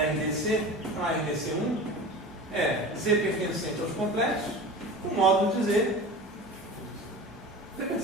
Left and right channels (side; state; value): both; normal; correlation 0.34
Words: então RDC1 é Z pertencente aos complexos com módulo de Z